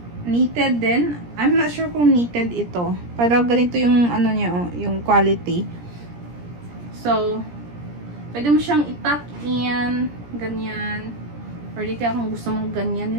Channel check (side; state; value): left; late; 17 ms